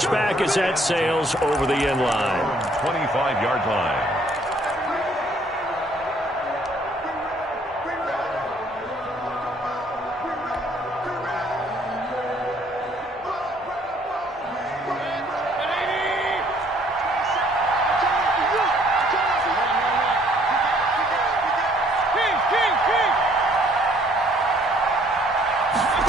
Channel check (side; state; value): both; normal; correlation 0.62